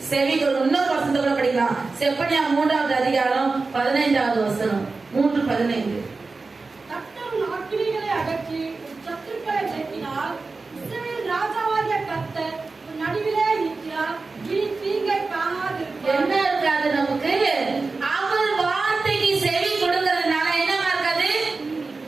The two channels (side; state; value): left; quieter; 3.9 dB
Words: செவி கொடுக்கணும். இன்னொரு வசனத்தை கூட படிக்கலாம், செப்பனியா 3ஆவது அதிகாரம் 15ஆவது வசனம், 3:15. கர்த்தர் அக்கினிகளை அகற்றி சத்துருக்களை நீக்கினார், இஸ்ரவேல் ராஜாவாகிய